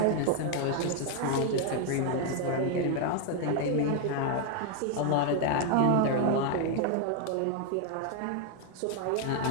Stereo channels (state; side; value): different; both; correlation 0.01